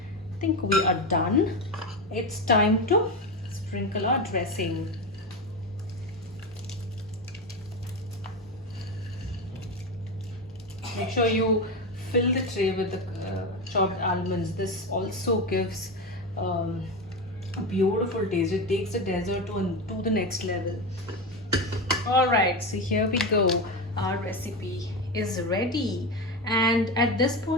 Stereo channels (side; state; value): both; normal; correlation 0.17